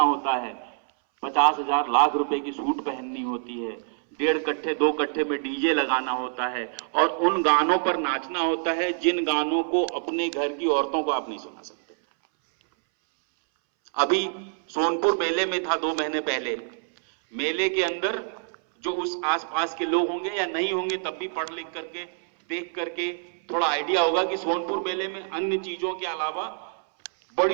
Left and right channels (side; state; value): left; silent; 61 dB below the other